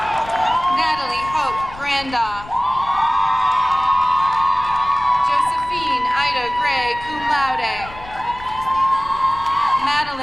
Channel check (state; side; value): noise; left; rumble, 17 dB below the sound